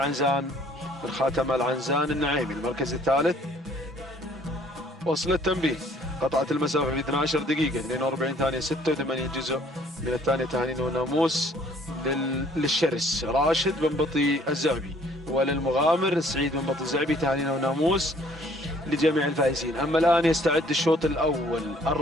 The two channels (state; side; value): normal; both; correlation 0.59